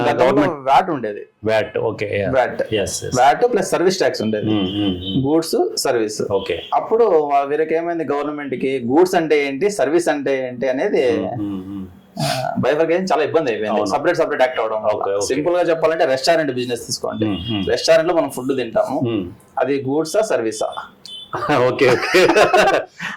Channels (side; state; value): both; identical; correlation 1.00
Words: వ్యాట్ ఉండేది. VAT. Okay. VAT plus service tax ఉండేది, గూడ్స్ సర్వీస్. ఓకే. అప్పుడు వీరికి ఏమైంది, గవర్నమెంట్ కి గూడ్స్ అంటే ఏంటి, సర్వీస్ అంటే ఏంటి అనేది బైఫర్కేషన్ చాలా ఇబ్బంది అయిపోయింది. సపరేట్ యాక్ట్ అవడం. సింపుల్ గా చెప్పాలంటే రెస్టారెంట్ బిజినెస్ తీసుకోండి. రెస్టారెంట్ లో మనం ఫుడ్ తింటాము, అది గూడ్సా సర్వీసా? ఓకే.